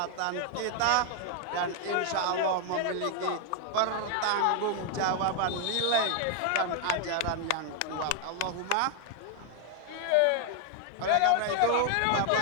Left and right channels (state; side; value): different; both; correlation 0.00